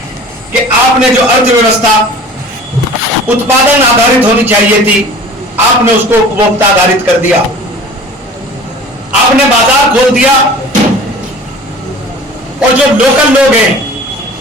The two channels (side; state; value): both; normal; correlation 0.43